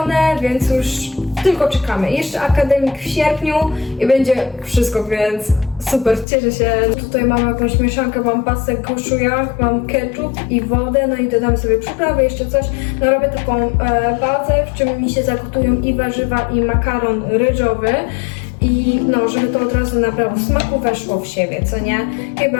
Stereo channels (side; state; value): right; drops out; at 6.2 s